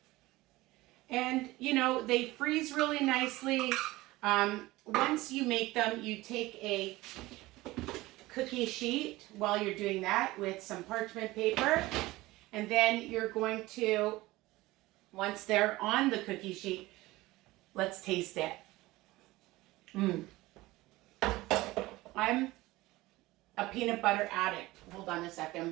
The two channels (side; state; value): left; quieter; 19.2 dB